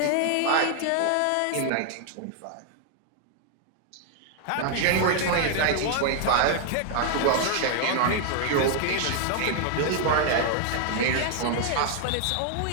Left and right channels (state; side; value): different; both; correlation 0.00